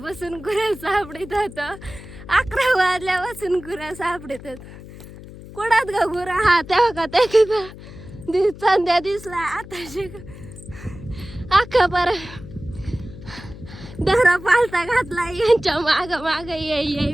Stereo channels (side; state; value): left; noise; hum, 16 dB below the sound